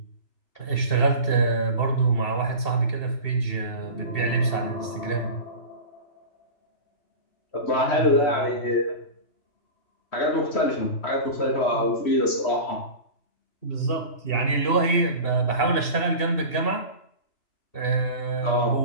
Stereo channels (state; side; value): late; right; 2.7 ms